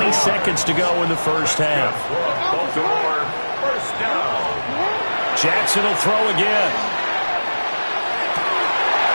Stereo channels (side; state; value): both; inverted; correlation -1.00